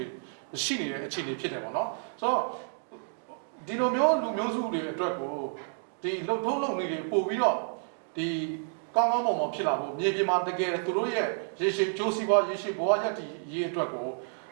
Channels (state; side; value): silent; left; digital silence